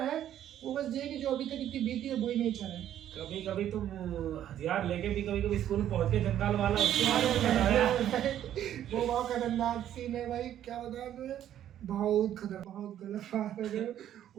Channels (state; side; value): quieter; left; 11.1 dB